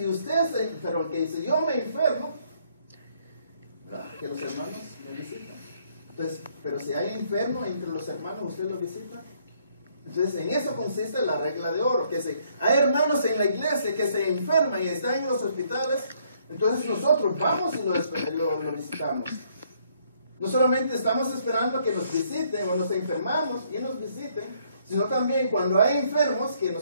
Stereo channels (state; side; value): inverted; both; correlation -0.67